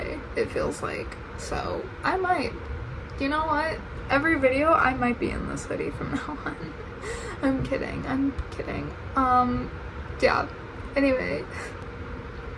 it feels like. So I might, you know what, every video I might be in this hoodie from now on. I'm kidding. Yeah, anyway,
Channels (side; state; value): both; identical; correlation 1.00